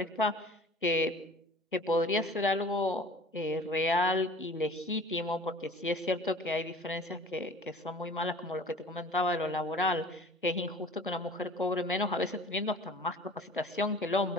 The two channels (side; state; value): both; normal; correlation 0.45